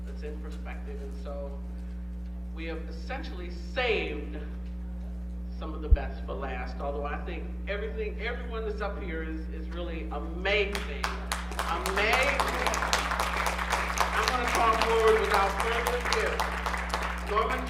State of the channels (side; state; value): both; identical; correlation 1.00